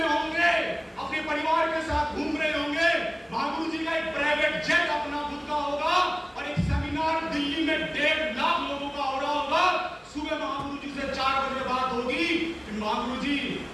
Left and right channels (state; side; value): identical; both; correlation 1.00